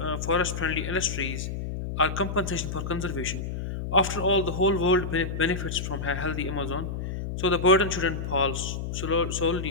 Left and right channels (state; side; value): noise; left; hum, 5 dB below the sound